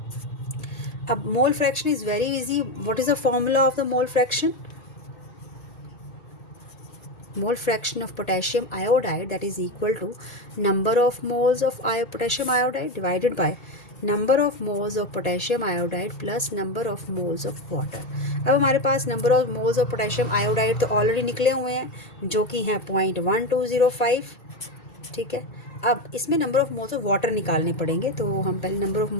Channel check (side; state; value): right; late; 1.8 ms